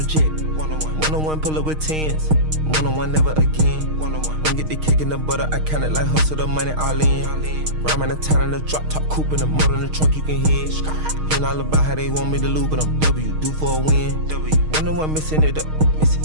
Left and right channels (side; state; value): left; late; 6.4 ms